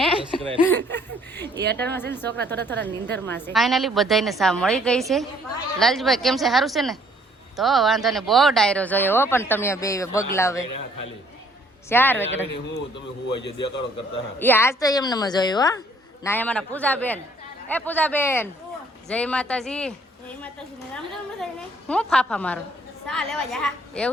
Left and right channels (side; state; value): both; normal; correlation 0.62